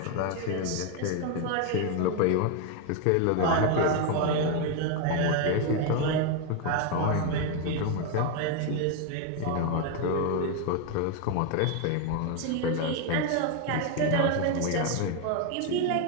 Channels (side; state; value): both; different; correlation 0.01